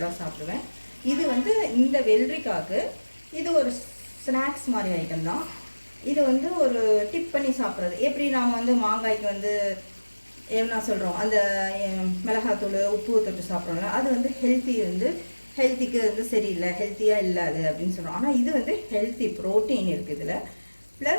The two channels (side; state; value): both; inverted; correlation -1.00